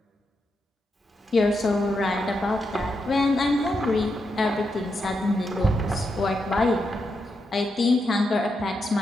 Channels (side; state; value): both; normal; correlation 0.84